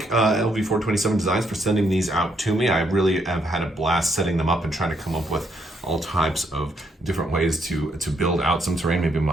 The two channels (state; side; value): normal; both; correlation 0.73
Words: Lv427-designs for sending these out to me. I really have had a blast setting them up and trying to come up with all types of different ways to build out some terrain. Maybe